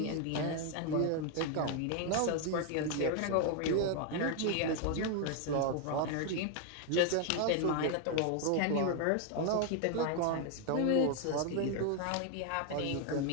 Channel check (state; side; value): different; both; correlation 0.01